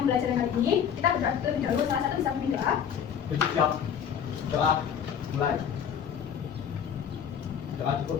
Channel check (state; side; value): quieter; right; 8.2 dB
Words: kali ini, kita berdoa terlebih dahulu. Salah satu bisa memimpin doa. Siap. Doa. Mulai. Doa